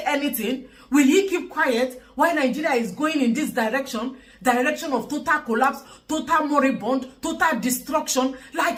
anything, will he keep quiet while Nigeria is going in this direction of total collapse, total moribund, total destruction,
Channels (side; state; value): both; identical; correlation 1.00